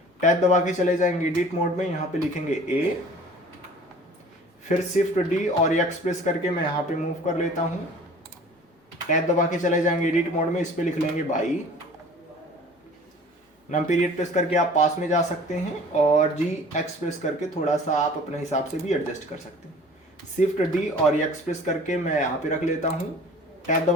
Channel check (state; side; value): normal; both; correlation 0.46